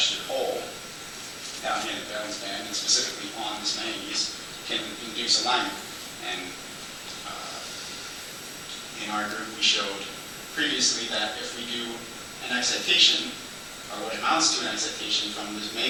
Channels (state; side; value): identical; both; correlation 1.00